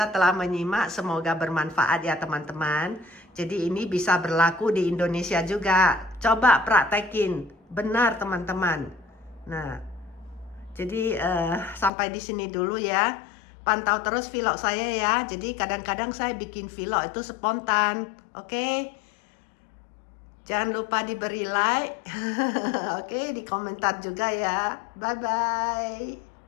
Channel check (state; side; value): drops out; right; at 11.9 s